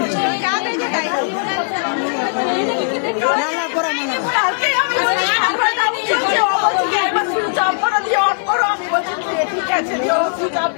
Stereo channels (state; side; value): silent; right; digital silence